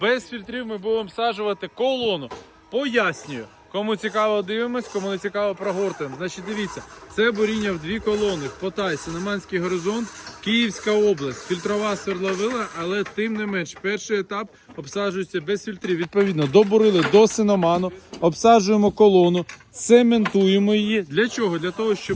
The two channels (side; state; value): both; identical; correlation 1.00